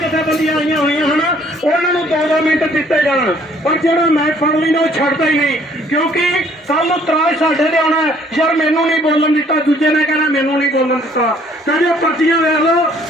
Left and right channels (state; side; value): normal; both; correlation 0.61